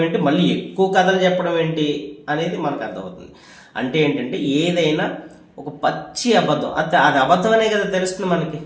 ఏంటి, మళ్ళీ ఎక్కువ కథలు చెప్పడం ఏంటి అనేది మనకు అర్థమవుతుంది. అంటే ఏంటంటే ఏదైనా ఒక పచ్చి అబద్ధం, అది అబద్ధం అనే కదా తెలుస్తుంది మనకి.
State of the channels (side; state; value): both; identical; correlation 1.00